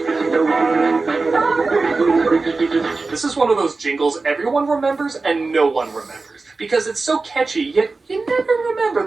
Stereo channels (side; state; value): left; quieter; 3.8 dB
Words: This is one of those jingles everyone remembers and no one remembers. Because it's so catchy, yet you never remember